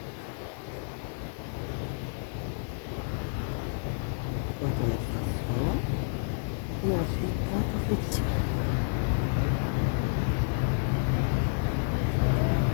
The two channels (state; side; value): silent; right; digital silence